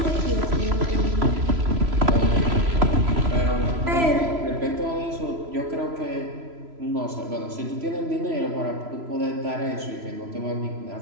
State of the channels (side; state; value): left; late; 3.0 ms